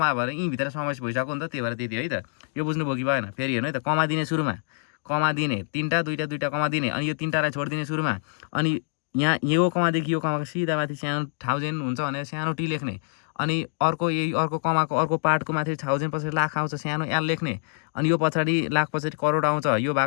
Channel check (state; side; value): silent; right; digital silence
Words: भएर यहीँभित्र समावेश भइसक्यो नि त, त्यही भएर त्यति है त। यो बुझ्नु भयो कि भएन? फेरि हेर्नु है त। कमा दिने, सुरुमा कमा दिने, 3टा 2टा कमा दिने, अनि यो 3टालाई छोडिदिने सुरुमा, अनि यहाँ यो कमादेखि यो कमाको सिधा माथि सानो 1000 हुन्छ भनेर सानो टी लेख्ने अनि अर्को कमाको अर्को पार्टको माथि 1000 पछाडि लाख आउँछ सानो एल लेख्ने अनि यो पछाडि लाख पछाडि करोड आउँछ यो